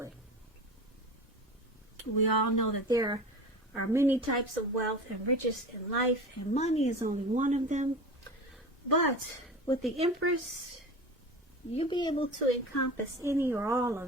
We all know that there are many types of wealth and riches in life, and money is only one of them. But with the Empress, you'll be able to encompass any or all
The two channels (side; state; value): both; normal; correlation 0.32